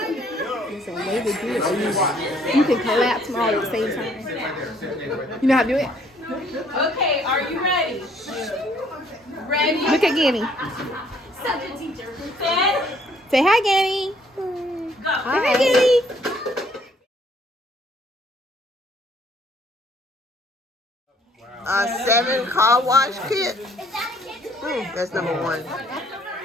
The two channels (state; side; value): normal; both; correlation 0.63